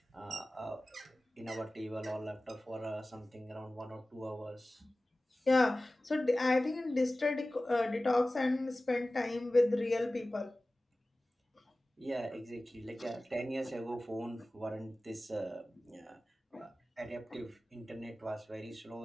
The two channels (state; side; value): normal; both; correlation 0.97